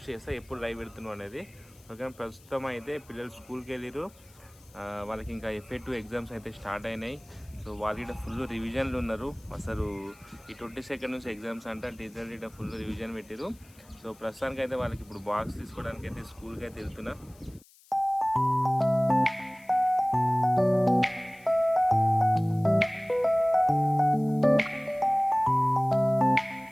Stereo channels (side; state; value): left; noise; hiss, 27 dB below the sound